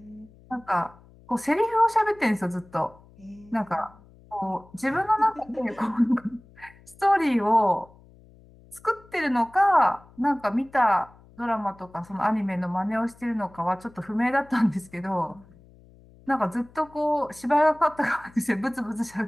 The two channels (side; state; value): left; noise; hum, 25 dB below the sound